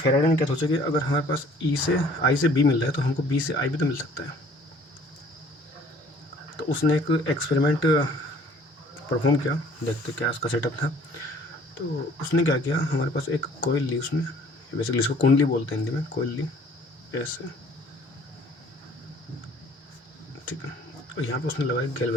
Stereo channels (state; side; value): normal; both; correlation 0.54